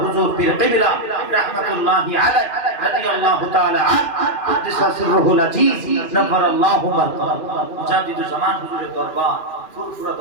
হুজুর পীর কিবলা রাহমাতুল্লাহি আলাইহি রাদিয়াল্লাহু তাআলা আন কুদ্দিসা সিররুল আজিজ নাফারাল্লাহু মারকা। মুজাদ্দিদুজ জামান হুজুরের দরবার, ফুরফুরা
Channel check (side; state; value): right; late; 2.4 ms